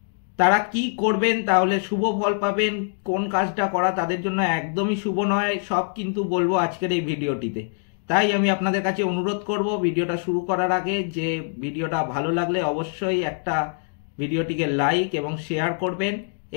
তারা কি করবেন, তাহলে শুভ ফল পাবেন, কোন কাজটা করা তাদের জন্য একদমই শুভ নয়, সব কিন্তু বলবো আজকের এই ভিডিওটিতে। তাই আমি আপনাদের কাছে অনুরোধ করব ভিডিওটা শুরু করার আগে যে ভিডিওটা ভালো লাগলে অবশ্যই একটা ভিডিওটিকে লাইক এবং শেয়ার করবেন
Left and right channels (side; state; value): right; silent; digital silence